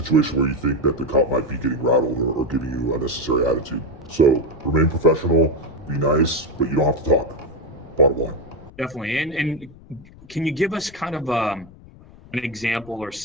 where you think that the cop might be getting rattled or giving you unnecessary attitude. So remain professional, be nice, but you don't have to talk. Bottom line. Definitely. And can you give us kind of an example or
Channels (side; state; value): left; noise; rumble, 21 dB below the sound